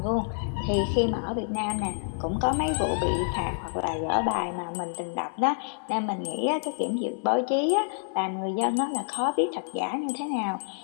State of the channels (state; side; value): silent; right; digital silence